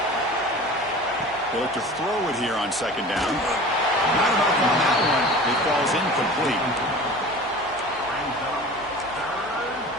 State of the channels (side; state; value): left; noise; hum, 24 dB below the sound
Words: They look to throw it here on 2nd down. Not enough on that one. It falls incomplete.